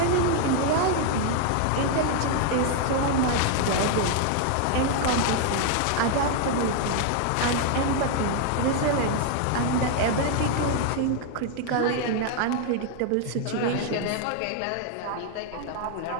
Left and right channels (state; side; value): different; both; correlation 0.00